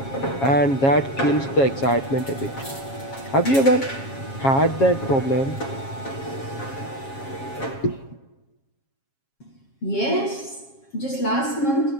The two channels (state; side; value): late; right; 7.4 ms